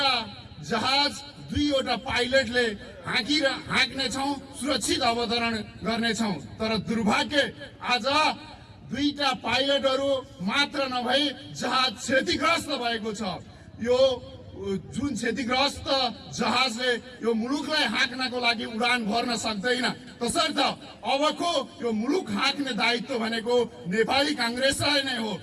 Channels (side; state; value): both; identical; correlation 1.00